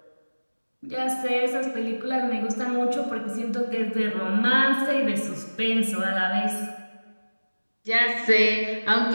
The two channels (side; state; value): both; inverted; correlation -1.00